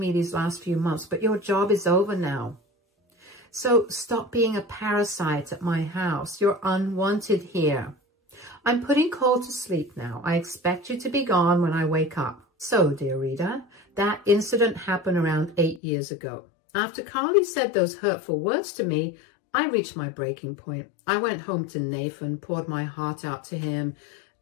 these last few months, but your job is over now. So stop being a parasite at my house. You're unwanted here. I'm putting Cole to sleep now. I expect you to be gone when I wake up." So, dear reader, that incident happened around 8 years ago. After Carly said those hurtful words to me, I reached my breaking point. I went home to Nathan, poured my heart out to him,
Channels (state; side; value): drops out; right; at 15.8 s